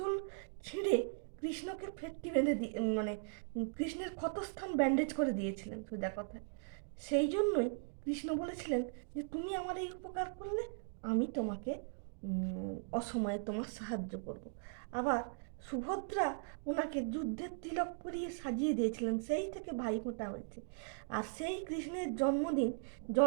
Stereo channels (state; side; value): silent; left; digital silence